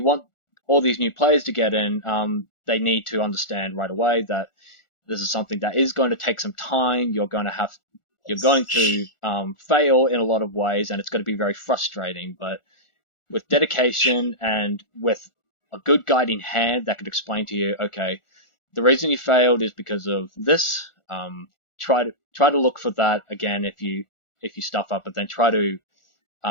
want all these new players to get in, they need to understand right away that this is something that is going to take some time. You're going to fail in a lot of ways, and it's going to be very frustrating. But with dedication and with a good guiding hand that could explain to you, okay, the reason you failed is because of this. Try to look for that again if you stuff up, but then try to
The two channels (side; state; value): right; late; 1.4 ms